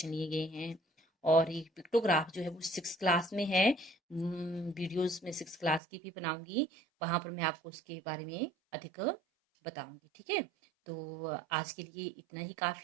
लिए गए हैं। और ये पिक्टोग्राफ जो है वो 6th क्लास में है। वीडियोस में 6th क्लास की भी बनाऊंगी, वहां पर मैं आपको उसके बारे में अधिक बताऊंगी, ठीक है। तो आज के लिए इतना ही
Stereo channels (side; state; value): left; drops out; at 5.8 s